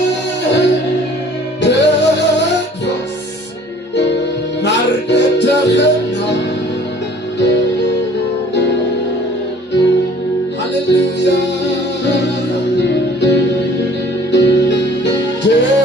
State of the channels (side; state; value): both; normal; correlation 0.52